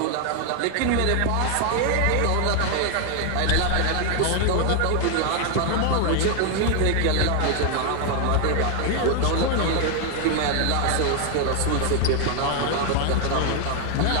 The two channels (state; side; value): different; both; correlation 0.00